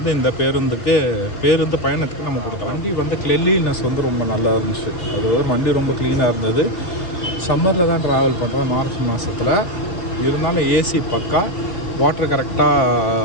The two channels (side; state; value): right; late; 3.5 ms